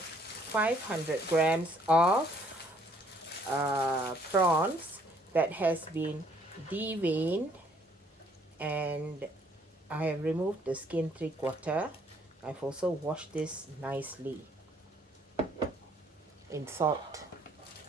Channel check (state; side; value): normal; both; correlation 0.64